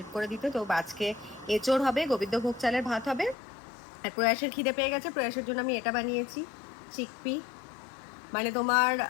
করে দিতে। তো আজকে এঁচোড় হবে, গোবিন্দভোগ চালের ভাত হবে। আর প্রয়াসের খিদে পেয়ে গেছে, প্রয়াসের জন্য আমি এটা বানিয়েছি, চিকপি, মানে তোমার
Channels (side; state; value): right; drops out; at 3.4 s